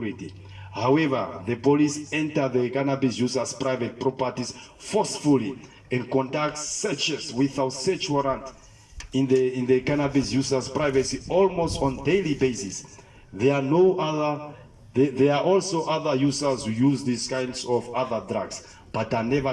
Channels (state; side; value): identical; both; correlation 1.00